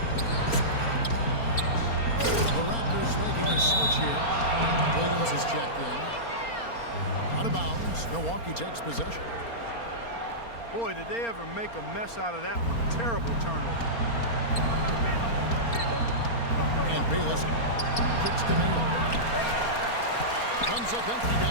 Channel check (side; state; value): right; late; 4.3 ms